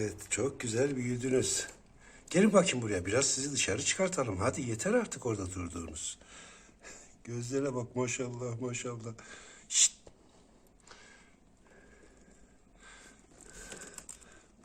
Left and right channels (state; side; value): identical; both; correlation 1.00